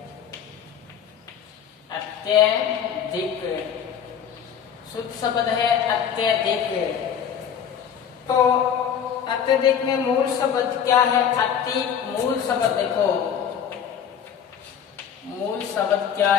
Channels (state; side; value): quieter; right; 8.3 dB